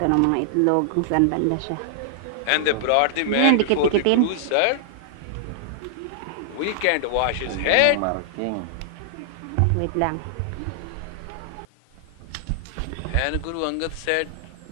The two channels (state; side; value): different; both; correlation -0.01